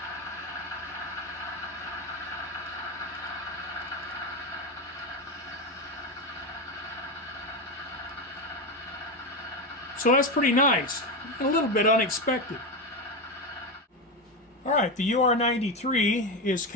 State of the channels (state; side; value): normal; both; correlation 0.15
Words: So that's pretty nice, a little bit unexpected. All right, the UR93 is